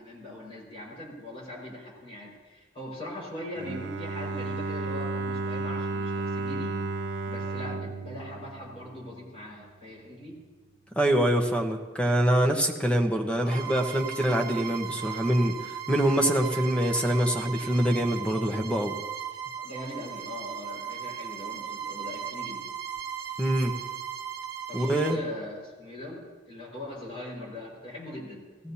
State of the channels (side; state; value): both; normal; correlation 0.71